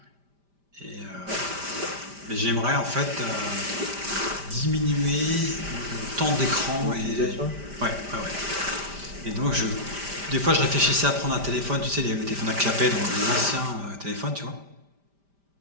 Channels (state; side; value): late; left; 5.1 ms